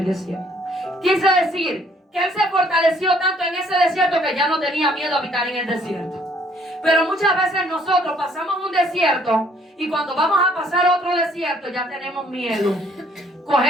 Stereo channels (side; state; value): both; normal; correlation 0.62